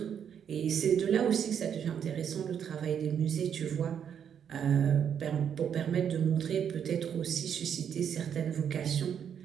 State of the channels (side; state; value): left; quieter; 8.3 dB